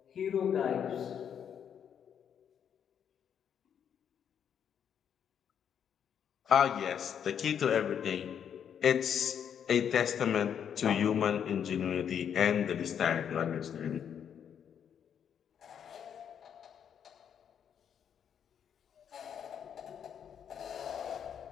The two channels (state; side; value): quieter; right; 8.4 dB